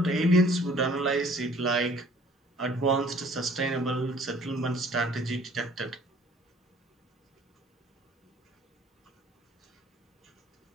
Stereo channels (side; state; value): both; normal; correlation 0.54